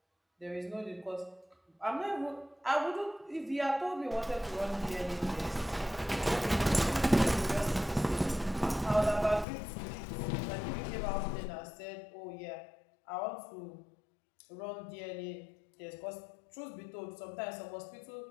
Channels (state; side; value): drops out; right; at 9.5 s